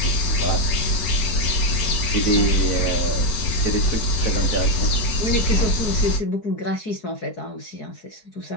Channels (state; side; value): late; right; 4.6 ms